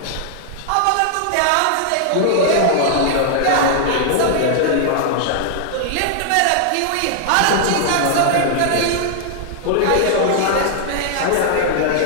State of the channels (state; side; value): different; both; correlation -0.01